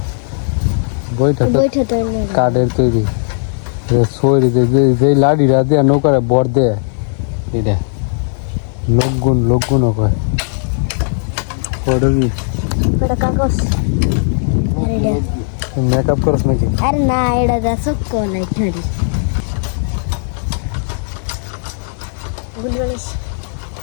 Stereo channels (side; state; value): right; silent; digital silence